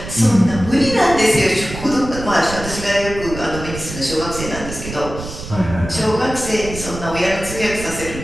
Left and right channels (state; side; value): noise; right; rumble, 10 dB below the sound